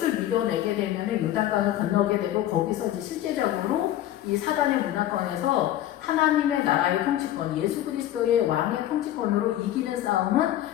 밀어내게 되면은 요단강을 건너게 되고 거기서 이제 실제적으로 이 사단의 문화권에서 하나님의 나라의 통치권, 예수 그리스도의 왕의 통치권으로 이기는 싸움은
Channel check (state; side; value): quieter; right; 13.1 dB